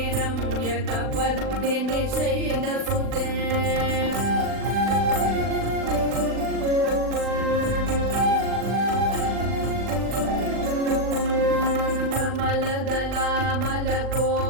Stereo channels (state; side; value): late; left; 40 ms